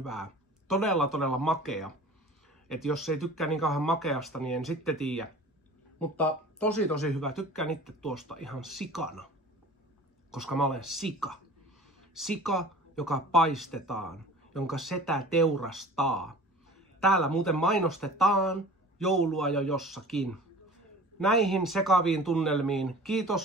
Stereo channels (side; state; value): both; normal; correlation 0.42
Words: Todella makea. Et jos ei tykkää niin kauhean makeasta, niin en sitten tiedä. Mutta tosi hyvä. Tykkään itse tuosta ihan sikana. Koska mä olen sika. Sika, joka paistetaan, jonka setä teurastaa. Täällä muuten mainostetaan joulua jo jossakin. Näihin sekaviin tunnelmiin